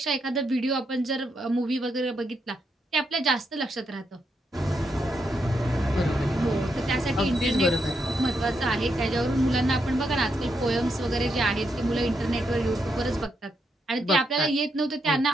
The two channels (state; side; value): normal; both; correlation 0.81